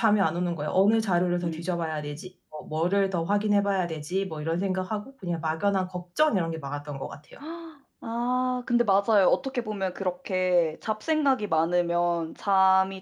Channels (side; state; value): both; identical; correlation 1.00